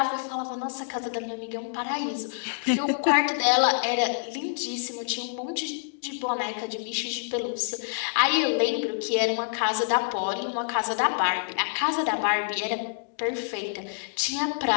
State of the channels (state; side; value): silent; right; digital silence